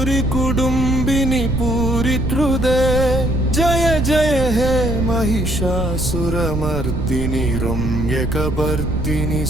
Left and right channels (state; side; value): noise; right; rumble, 3 dB below the sound